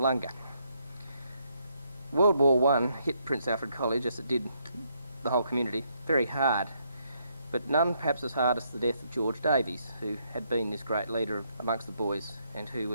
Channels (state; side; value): inverted; both; correlation -0.74